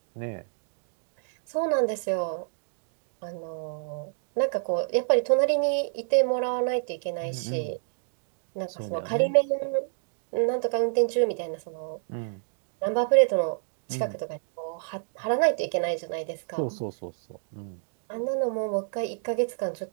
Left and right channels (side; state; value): left; silent; digital silence